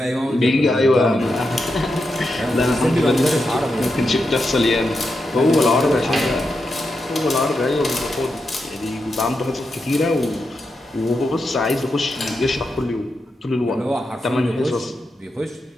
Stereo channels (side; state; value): both; normal; correlation 0.86